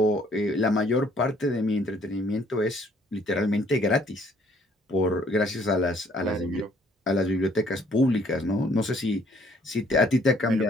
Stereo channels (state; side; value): normal; both; correlation 0.62